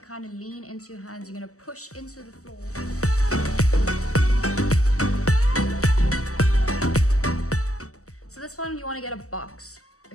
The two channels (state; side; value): late; right; 0.65 ms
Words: kind of lean into your hands, you're gonna push into the floor. So this one, you wanna get a box.